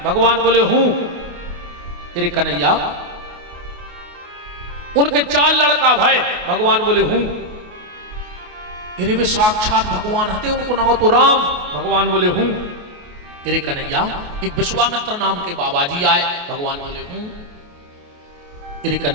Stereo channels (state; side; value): late; left; 28 ms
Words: भगवान बोले हूं। तेरे कन्हैया, उनके 4 लड़का भाई। भगवान बोले हूं। तेरे वे साक्षात भगवान हते, उनको नाम तो राम। भगवान बोले हूं। तेरे कन्हैया, एक विश्वामित्र नाम के बाबा जी आए। भगवान बोले हूं। तेरे